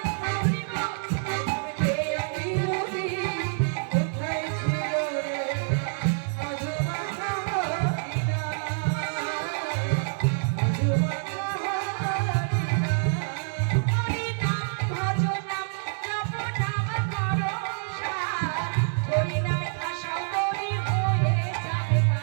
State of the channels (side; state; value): left; silent; digital silence